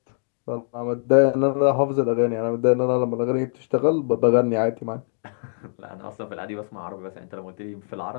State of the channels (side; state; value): right; silent; digital silence